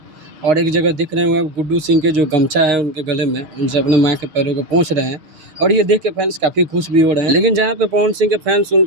और एक जगह दिख रहे होंगे आप, गुड्डू सिंह के जो गमछा है उनके गले में, उनसे अपने माँ के पैरों को पोंछ रहे हैं और ये देख के फैंस काफ़ी खुश भी हो रहे हैं। लेकिन जहाँ पे पवन सिंह के फैंस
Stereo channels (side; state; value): left; late; 6.4 ms